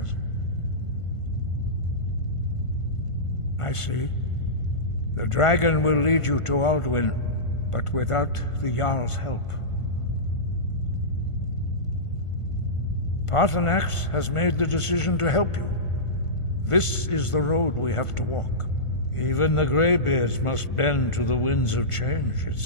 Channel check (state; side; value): late; right; 1.5 ms